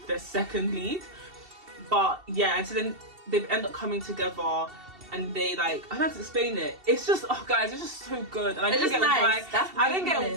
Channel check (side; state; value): left; late; 2.7 ms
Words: the second lead. But yeah, and so then they end up coming together, and they like, I don't have to explain it. It's just, oh guys, it's just so good. And I didn't get